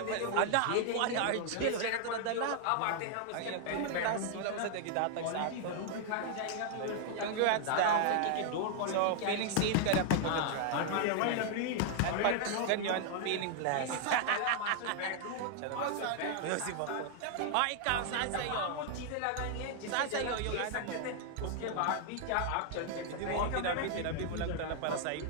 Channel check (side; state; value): both; different; correlation 0.00